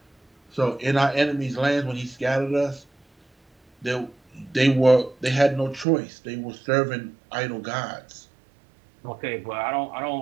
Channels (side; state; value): left; drops out; at 5.9 s